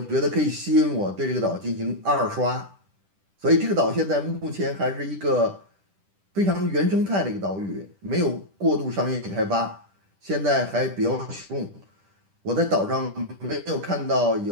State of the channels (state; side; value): late; left; 10 ms